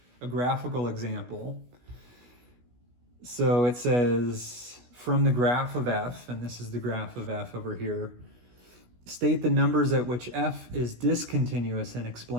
a graphical example. So it says, from the graph of f, and this is the graph of f over here, state the numbers at which f is discontinuous and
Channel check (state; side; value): late; left; 16 ms